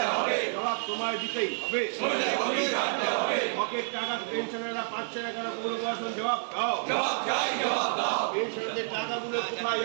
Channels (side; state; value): left; silent; 58 dB below the other